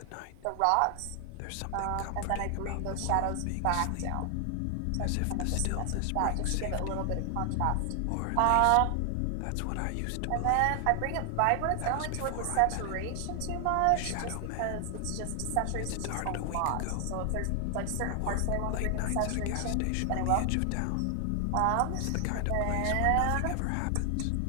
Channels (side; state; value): both; different; correlation 0.00